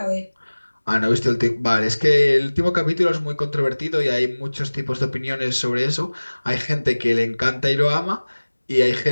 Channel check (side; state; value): both; inverted; correlation -1.00